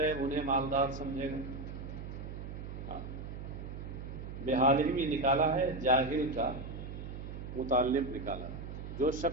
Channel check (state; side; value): noise; right; hum, 8 dB below the sound